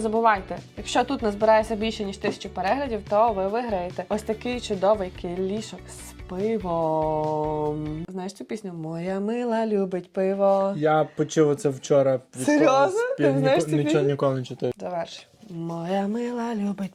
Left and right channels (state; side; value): identical; both; correlation 1.00